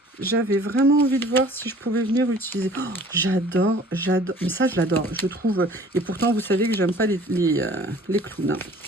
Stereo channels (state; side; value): normal; both; correlation 0.50